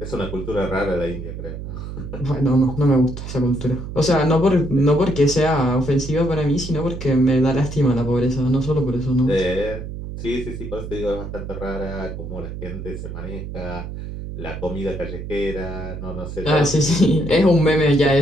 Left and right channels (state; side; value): noise; right; hum, 8 dB below the sound